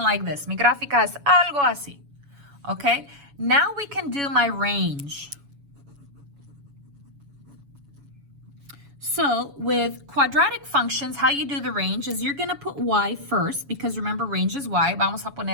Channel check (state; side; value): late; left; 7.1 ms